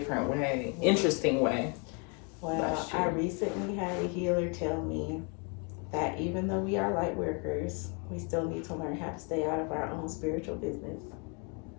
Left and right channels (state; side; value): quieter; right; 35.1 dB